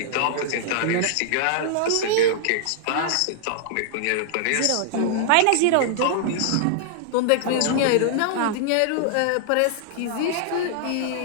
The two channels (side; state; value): both; different; correlation -0.01